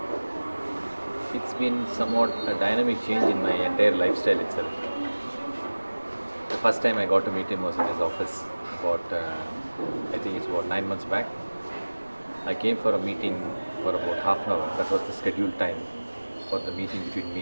it's been somewhat a dynamic change in my entire lifestyle itself. The first time I got to meet him was in his office I think it's about 9 months back. I came for a meeting for about half an hour. That was the scheduled time for the meeting between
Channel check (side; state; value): both; inverted; correlation -1.00